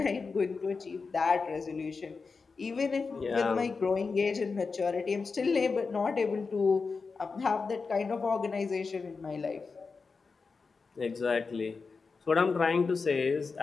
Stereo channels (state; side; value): quieter; right; 4.6 dB